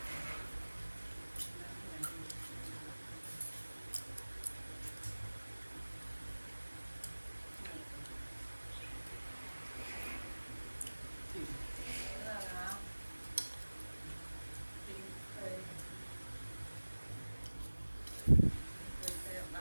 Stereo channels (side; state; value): both; inverted; correlation -1.00